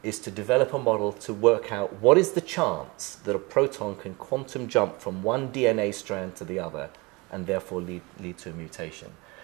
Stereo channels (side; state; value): left; quieter; 25.5 dB